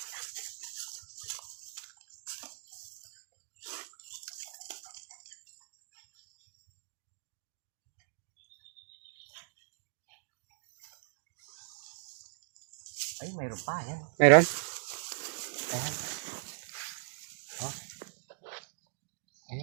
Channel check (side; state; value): left; silent; digital silence